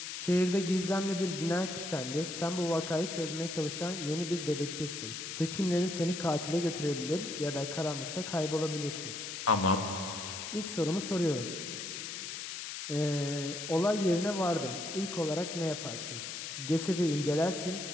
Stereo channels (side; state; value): left; noise; hiss, 6 dB below the sound